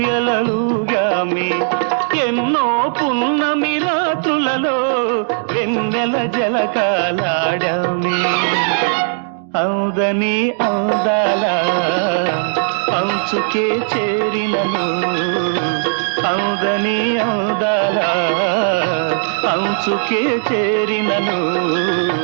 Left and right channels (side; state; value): left; silent; digital silence